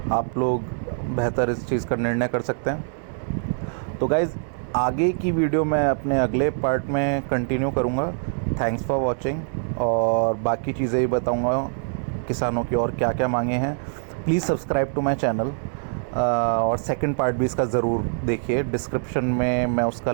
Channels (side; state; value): left; silent; 63 dB below the other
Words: आप लोग बेहतर इस चीज़ का निर्णय कर सकते हैं। तो गाइज़ आगे की वीडियो मैं अपने अगले पार्ट में कंटिन्यू करूँगा। थैंक्स फॉर वॉचिंग, और बाकी चीज़ें ही बताऊँगा किसानों की और क्या क्या मांगे हैं। Please subscribe to my channel, और सेकंड पार्ट भी इसका ज़रूर देखिए। डिस्क्रिप्शन में मैं उसका